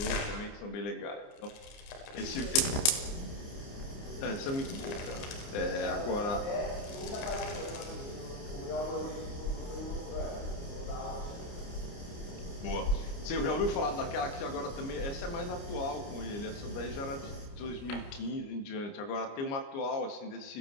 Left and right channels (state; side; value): late; right; 29 ms